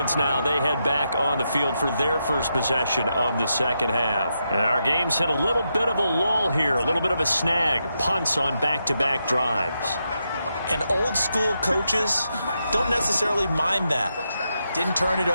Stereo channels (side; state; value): both; inverted; correlation -0.84